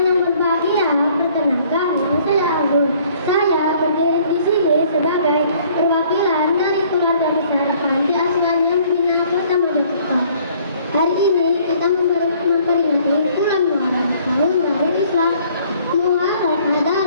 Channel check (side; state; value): both; inverted; correlation -0.59